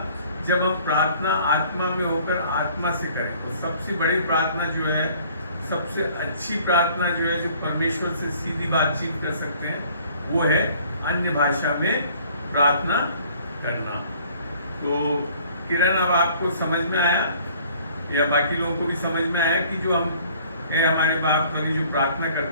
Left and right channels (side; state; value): both; inverted; correlation -0.56